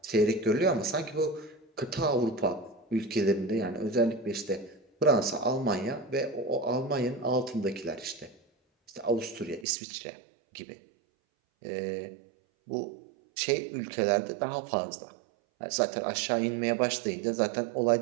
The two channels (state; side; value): drops out; left; at 9.7 s